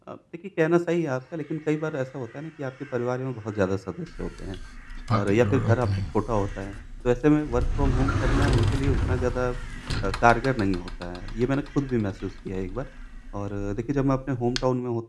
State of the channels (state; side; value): identical; both; correlation 1.00